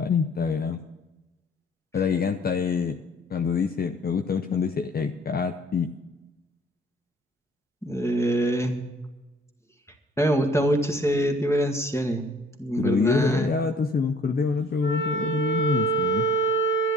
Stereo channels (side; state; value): both; normal; correlation 0.56